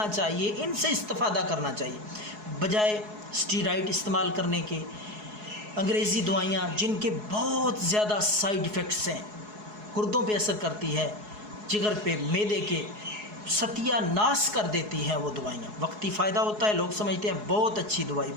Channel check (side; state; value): left; late; 4.7 ms